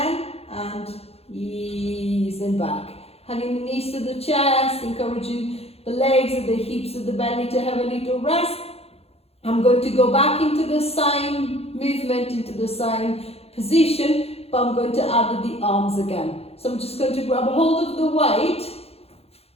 and ease and back. Having the knees to the chest, encouraging the legs and the hips and the belly to have a little rest. I'm going to go back into the same movement, into the same position, but I'm going to add the arms again. So I'm just going to grab hold of the weight,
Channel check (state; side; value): late; right; 0.29 ms